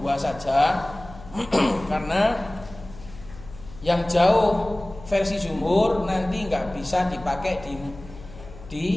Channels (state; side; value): noise; left; hum, 17 dB below the sound